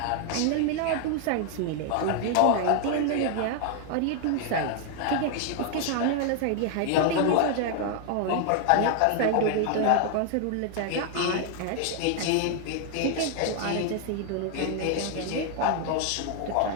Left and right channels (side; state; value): both; different; correlation 0.00